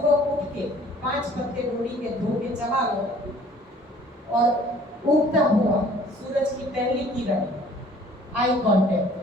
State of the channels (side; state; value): both; normal; correlation 0.54